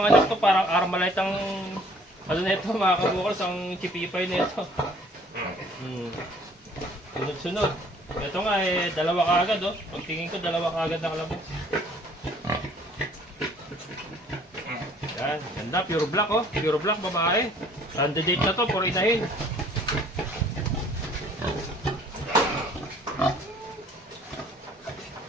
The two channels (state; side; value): normal; both; correlation 0.56